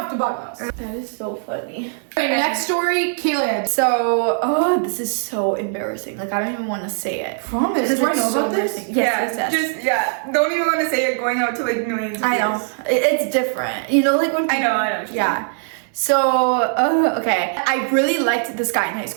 to buy the house. That is so funny. Okay, next story, Caleb. So, this is so embarrassing. Like, I don't even want to say it. Promise. Because Do I it's know so about this? embarrassing. Yes. Just, don't even want to say it going out to like millions of I know. views. It's different. You know, like when I know. Yeah. So, okay. I really liked this guy in high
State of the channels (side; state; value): left; silent; digital silence